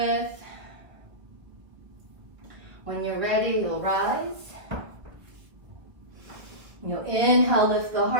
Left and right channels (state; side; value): late; left; 1.3 ms